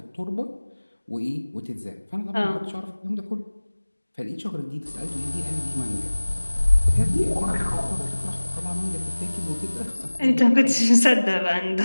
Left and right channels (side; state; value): both; inverted; correlation -1.00